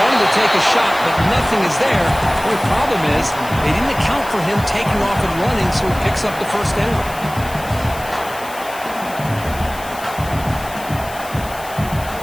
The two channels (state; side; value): noise; left; hiss, 16 dB below the sound